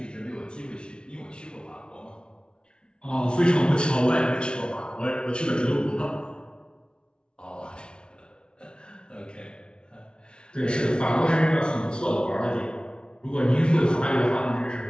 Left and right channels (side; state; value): right; late; 0.056 ms